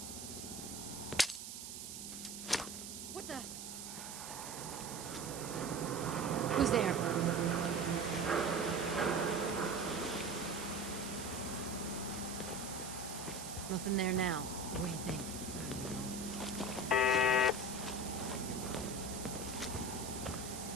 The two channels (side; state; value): right; noise; hiss, 8 dB below the sound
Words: What the? Who's there? Nothing there now. What do you think?